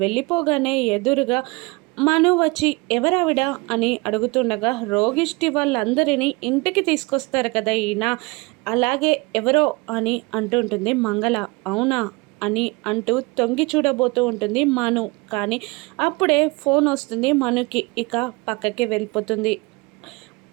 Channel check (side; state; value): left; quieter; 26.1 dB